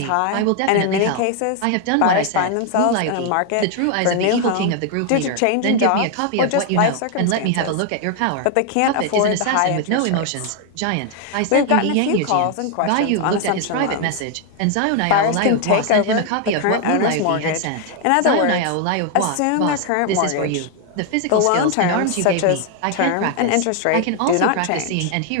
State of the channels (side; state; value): both; different; correlation 0.00